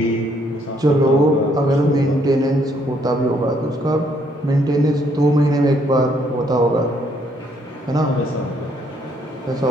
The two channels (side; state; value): both; normal; correlation 0.69